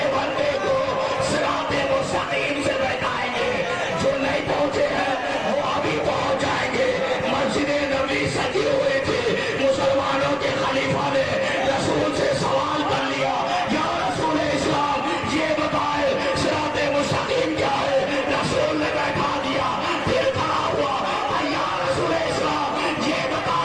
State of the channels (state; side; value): identical; both; correlation 1.00